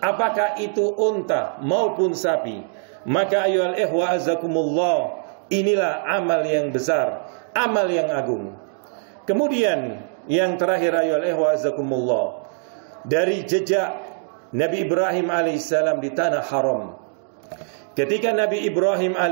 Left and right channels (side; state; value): left; silent; digital silence